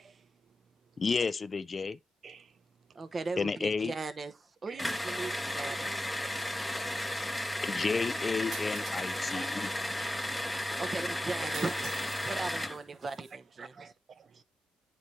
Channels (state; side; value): normal; both; correlation 0.93